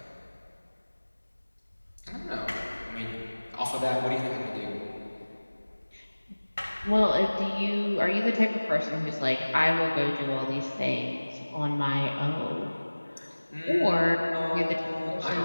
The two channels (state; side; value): inverted; both; correlation -1.00